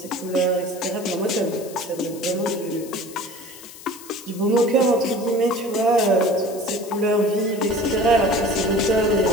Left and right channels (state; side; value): noise; left; hiss, 17 dB below the sound